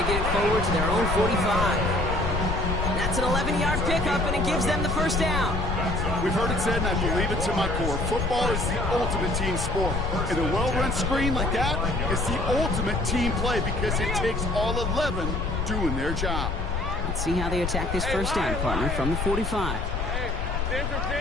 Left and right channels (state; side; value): noise; left; rumble, 2 dB below the sound